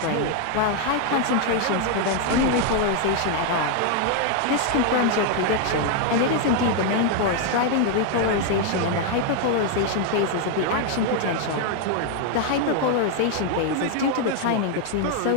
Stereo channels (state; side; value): different; both; correlation 0.00